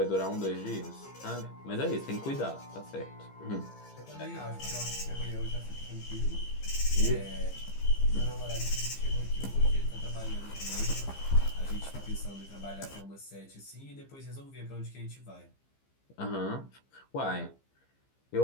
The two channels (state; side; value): late; right; 15 ms